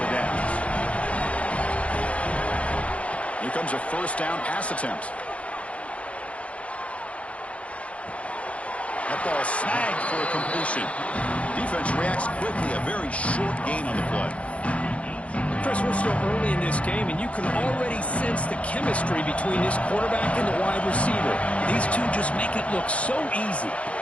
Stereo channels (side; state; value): right; late; 0.063 ms